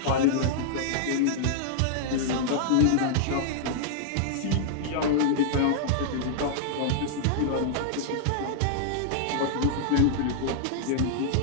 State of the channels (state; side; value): different; both; correlation -0.01